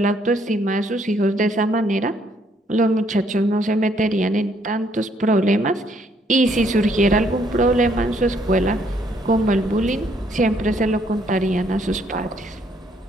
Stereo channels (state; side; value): normal; both; correlation 0.68